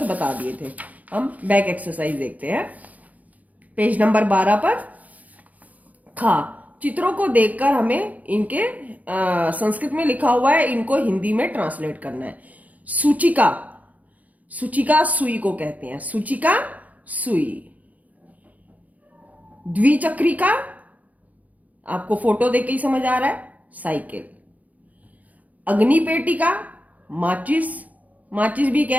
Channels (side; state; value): left; late; 0.076 ms